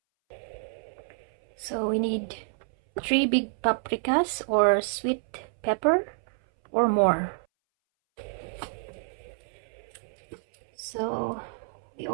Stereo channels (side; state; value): left; silent; 59 dB below the other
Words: So we need 3 big paprikas or sweet pepper or more. So we